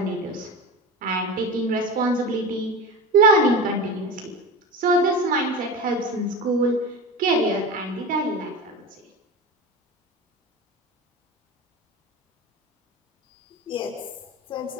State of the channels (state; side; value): normal; both; correlation 0.28